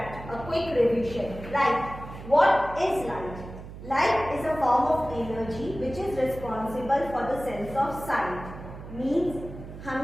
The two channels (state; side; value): noise; right; hum, 13 dB below the sound